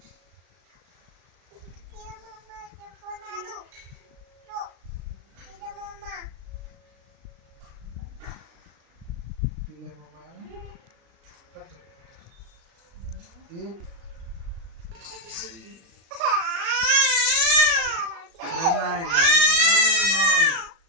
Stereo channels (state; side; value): late; left; 36 ms